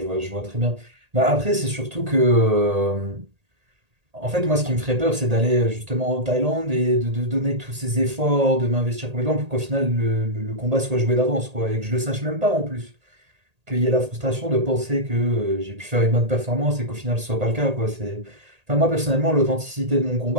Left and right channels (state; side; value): late; left; 1.8 ms